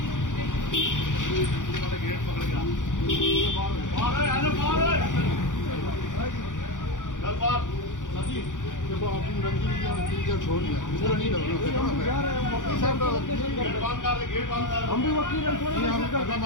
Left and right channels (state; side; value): late; right; 0.87 ms